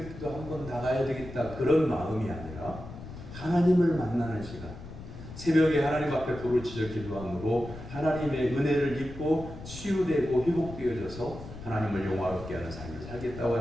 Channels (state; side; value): noise; left; rumble, 13 dB below the sound